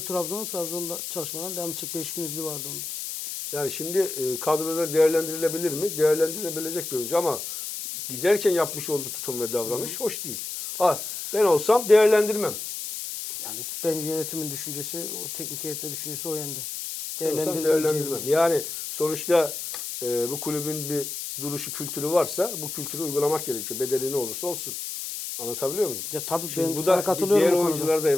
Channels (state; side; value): noise; left; hiss, 6 dB below the sound